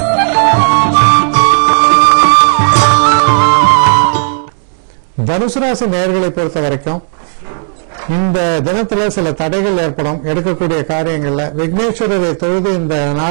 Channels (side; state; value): left; silent; digital silence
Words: தனுசு ராசி நேயர்களை பொறுத்த வரைக்கும் இந்த தினத்துல சில தடைகள் ஏற்படும். எடுக்கக்கூடிய காரியங்கள்ல விக்னேஸ்வரரை தொழுது இந்த